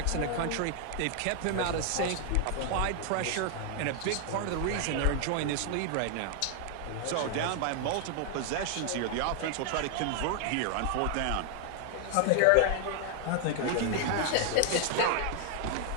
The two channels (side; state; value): both; different; correlation 0.00